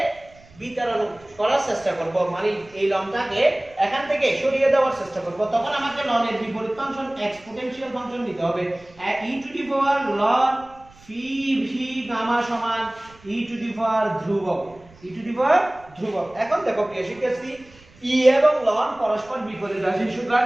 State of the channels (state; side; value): noise; right; rumble, 26 dB below the sound